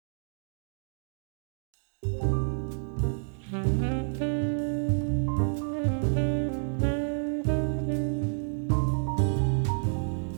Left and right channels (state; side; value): silent; left; digital silence